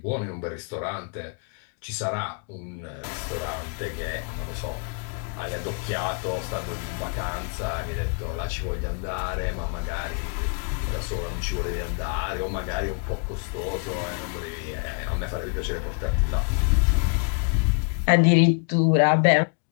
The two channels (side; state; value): right; quieter; 38.5 dB